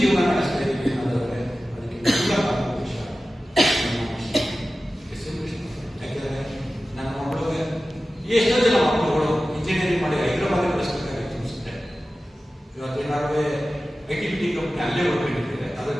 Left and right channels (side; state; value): both; normal; correlation 0.95